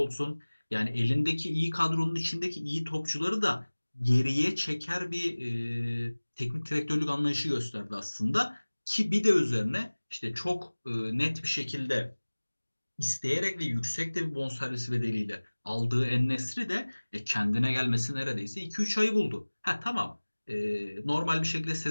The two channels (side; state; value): both; inverted; correlation -1.00